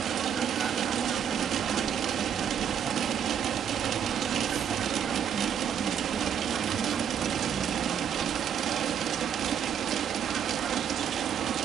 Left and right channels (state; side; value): quieter; left; 8.6 dB